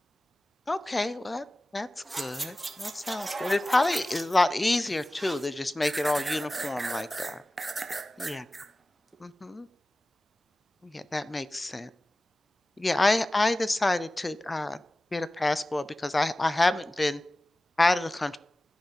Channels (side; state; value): both; normal; correlation 0.97